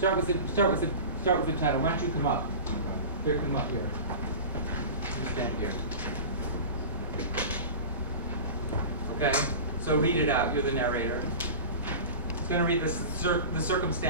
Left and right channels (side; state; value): both; inverted; correlation -0.32